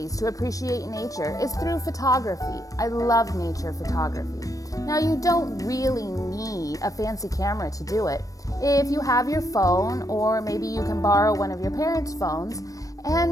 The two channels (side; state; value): right; late; 0.16 ms